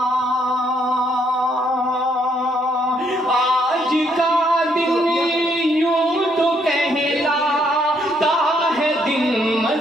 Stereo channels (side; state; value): both; normal; correlation 0.71